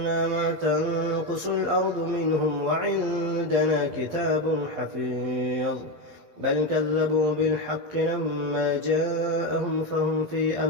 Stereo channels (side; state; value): left; late; 12 ms